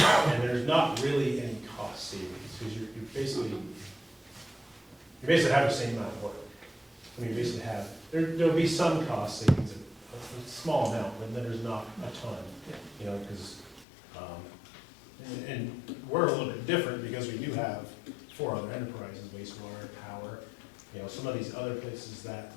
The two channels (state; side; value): drops out; right; at 13.9 s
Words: there's not really any cost savings, because you basically have the same amount of work. I mean, you basically have, there'll be some cost savings, a small amount, but then there's not a ton, you know, because, and we're a little bit different because we do have 4 other enterprises, wastewater, power, you know, some of these other places that,